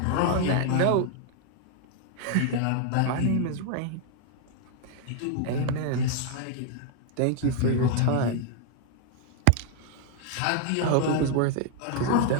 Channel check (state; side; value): different; both; correlation 0.00